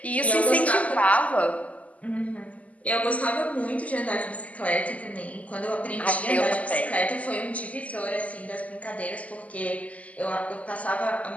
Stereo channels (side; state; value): right; late; 0.072 ms